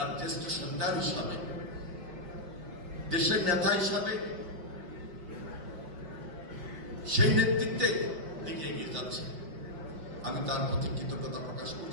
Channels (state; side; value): late; left; 5.6 ms